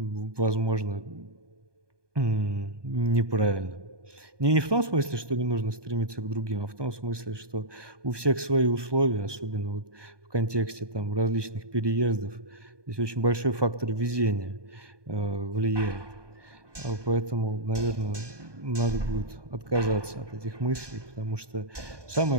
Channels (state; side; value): late; left; 1.2 ms